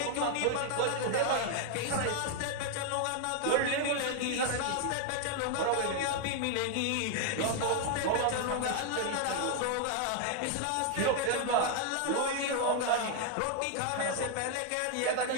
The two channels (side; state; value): both; different; correlation 0.00